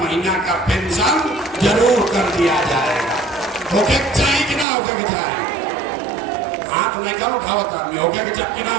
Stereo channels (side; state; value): left; drops out; at 4.7 s